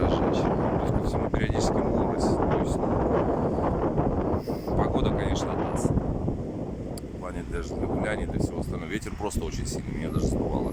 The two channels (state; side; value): identical; both; correlation 1.00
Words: Плюс ко всему периодически морось. То есть, погода, конечно, даст. В плане для гуляний, для всего остального. Ветер просто очень сильный, меня даже сдувало.